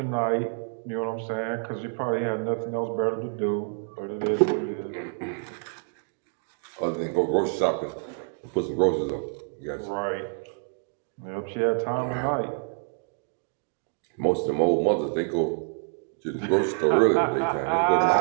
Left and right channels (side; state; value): left; silent; 60 dB below the other